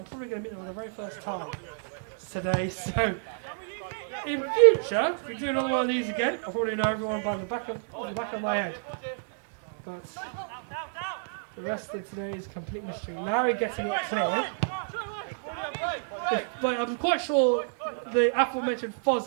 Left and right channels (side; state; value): left; silent; digital silence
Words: going to meet them for the very first time today. So in future, if we do another one of these again, I'll probably know everyone by the back of my head. But the rest of today is complete mystery. Larry getting it clear. But I'm quite sure the aforementioned Foz